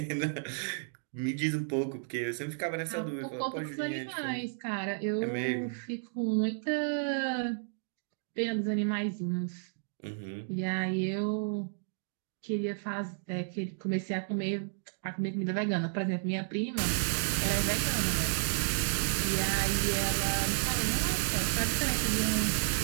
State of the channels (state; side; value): silent; left; digital silence